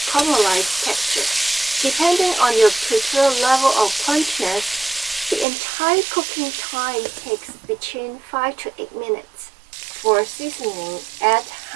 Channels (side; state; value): left; drops out; at 5.5 s